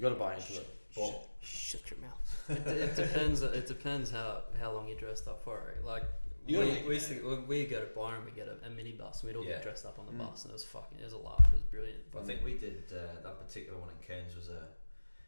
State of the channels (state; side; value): inverted; both; correlation -1.00